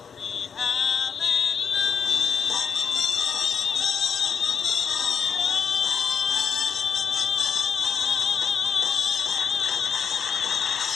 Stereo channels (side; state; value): right; quieter; 6.8 dB